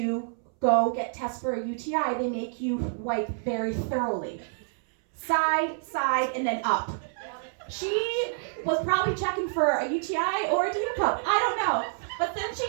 go get tested for a UTI, they make you wipe very thoroughly. side, and then up. She was probably checking for a UTI or a tear cup. I don't know. But then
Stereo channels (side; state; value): left; silent; 60 dB below the other